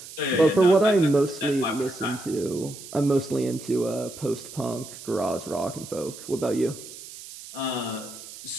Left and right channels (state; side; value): noise; right; hiss, 14 dB below the sound